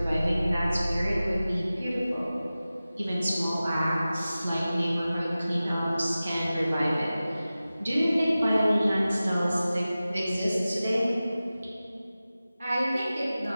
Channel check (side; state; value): both; inverted; correlation -0.96